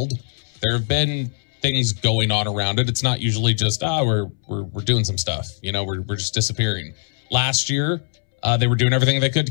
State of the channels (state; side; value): silent; right; 65 dB below the other